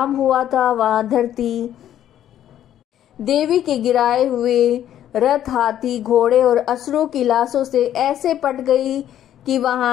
हुआ था वहां धरती देवी के गिराए हुए रथ, हाथी, घोड़े और असुरों की लाशों से ऐसे पट गई कि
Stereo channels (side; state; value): right; quieter; 11.2 dB